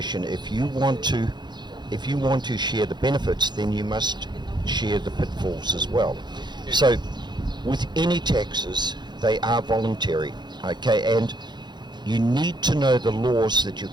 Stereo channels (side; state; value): left; late; 0.21 ms